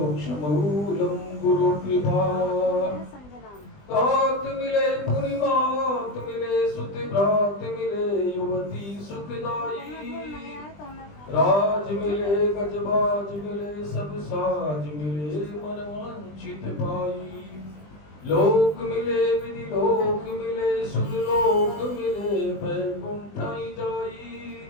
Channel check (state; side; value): late; right; 20 ms